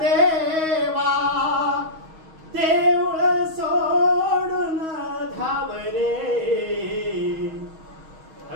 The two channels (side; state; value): left; late; 6.3 ms